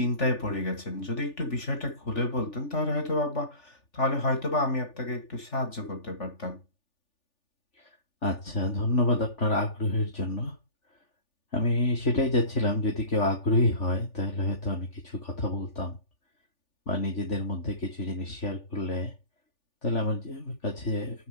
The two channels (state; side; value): late; right; 3.4 ms